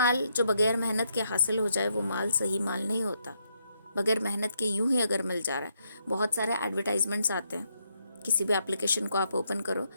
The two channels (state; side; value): inverted; both; correlation -0.77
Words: جو بغیر محنت کے حاصل ہو جائے وہ مال صحیح مال نہیں ہوتا. بغیر محنت کے یوں ہی اگر مل جا رہا ہے. بہت سارے ایڈورٹائزمنٹس آتے ہیں، کسی بھی اپلیکیشن کو آپ اوپن کرو